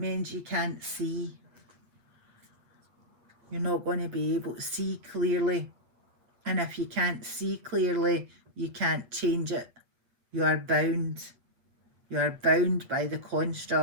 you can't see. You're not going to be able to see clearly. And if you can't see clearly, you can't change it. You are bound. You are bound by the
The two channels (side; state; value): left; late; 8.6 ms